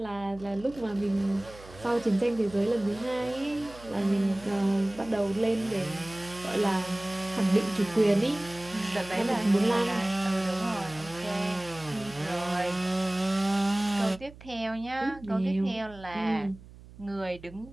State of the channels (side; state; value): right; noise; hum, 19 dB below the sound